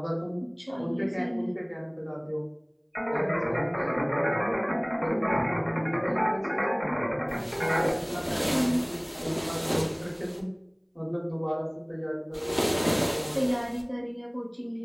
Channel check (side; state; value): both; identical; correlation 1.00